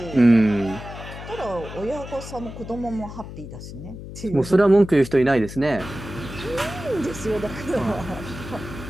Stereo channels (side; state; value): left; noise; hum, 12 dB below the sound